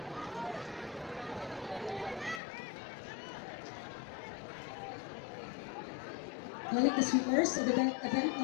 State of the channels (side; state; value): right; drops out; at 2.4 s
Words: Calling the swimmers of event